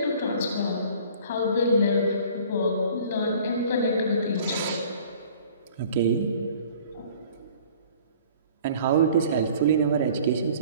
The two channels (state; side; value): inverted; both; correlation -0.50